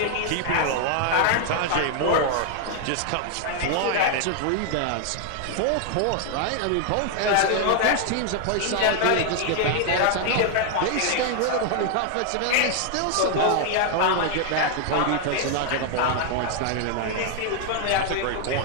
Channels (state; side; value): different; both; correlation 0.00